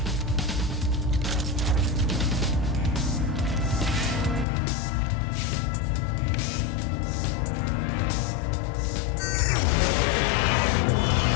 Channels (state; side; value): drops out; right; at 4.5 s